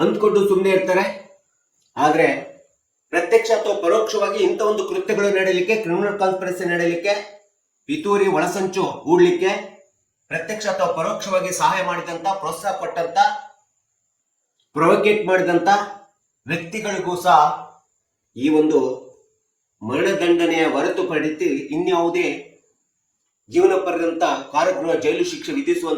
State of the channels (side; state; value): both; identical; correlation 1.00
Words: ಸುಮ್ಮನೆ ಇರ್ತಾರೆ. ಆದ್ರೆ ಪ್ರತ್ಯಕ್ಷ ಅಥವಾ ಪರೋಕ್ಷವಾಗಿ ಇಂಥ ಒಂದು ಕೃತ್ಯಗಳು ನಡೆಯಲಿಕ್ಕೆ, ಕ್ರಿಮಿನಲ್ ಕಾನ್ಸ್ಪಿರಸಿ ನಡೆಯಲಿಕ್ಕೆ, ಪಿತೂರಿ ಒಳಸಂಚು ಹೂಡ್ಲಿಕ್ಕೆ ಪ್ರತ್ಯಕ್ಷ ಅಥವಾ ಪರೋಕ್ಷವಾಗಿ ಸಹಾಯ ಮಾಡಿದಂತ, ಪ್ರೋತ್ಸಾಹ ಕೊಟ್ಟಂತ, ಪ್ರೊವೋಕೇಟ್ ಮಾಡಿದಂತ ವ್ಯಕ್ತಿಗಳಿಗೂ ಸಹ ಈ ಒಂದು ಮರಣದಂಡನೆಯ ಹೊರತುಪಡಿಸಿ ಇನ್ಯಾವುದೇ ಜೀವನ ಪರ್ಯಂತ ಕಾರಾಗೃಹ ಜೈಲು ಶಿಕ್ಷೆ